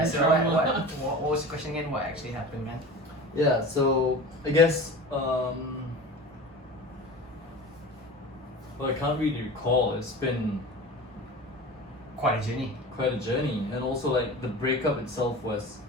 of so my what trauma? was the question again? What actually happened, man? Yeah, so I guess well, I can't really recall. It's been Quite a journey. quite a journey, and also like the breakup itself was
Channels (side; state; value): both; normal; correlation 0.34